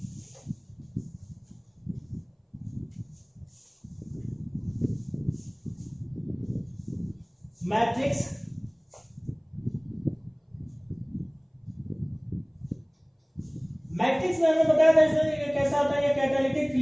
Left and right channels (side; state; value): both; identical; correlation 1.00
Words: मैट्रिक्स में हमें बताया था इसमें कैसा होता है। ये कैटालिटिक